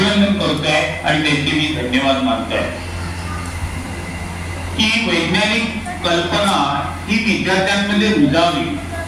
करतोय आणि त्यांचे मी धन्यवाद मानतोय. की वैज्ञानिक कल्पना ही विद्यार्थ्यांमध्ये रुजावी,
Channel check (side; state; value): both; identical; correlation 1.00